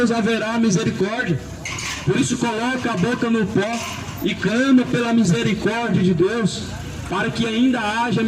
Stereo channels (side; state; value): both; identical; correlation 1.00